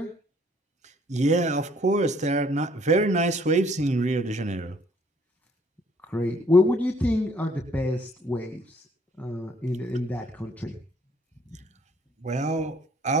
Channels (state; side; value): normal; both; correlation 0.62